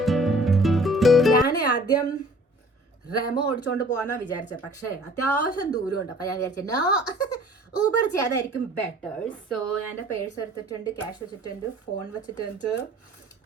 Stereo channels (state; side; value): normal; both; correlation 0.51